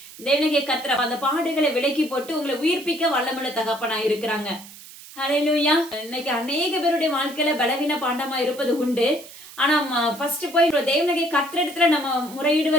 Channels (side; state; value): right; noise; hiss, 17 dB below the sound